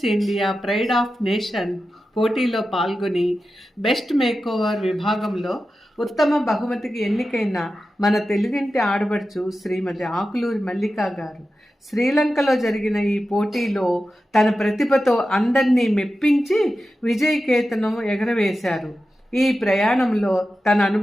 India pride of nation పోటీలో పాల్గొని బెస్ట్ మేకోవర్ విభాగంలో ఉత్తమ బహుమతికి ఎన్నికైన మన తెలుగింటి ఆడబడుచు శ్రీమతి ఆకులూరి మల్లికా గారు శ్రీలంకలో జరిగిన ఈ పోటీలో తన ప్రతిభతో అందరినీ మెప్పించి విజయకేతనం ఎగరవేశారు. ఈ ప్రయాణంలో తన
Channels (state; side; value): normal; both; correlation 0.92